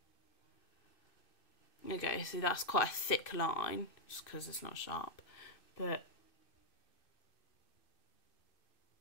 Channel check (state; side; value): late; right; 2.5 ms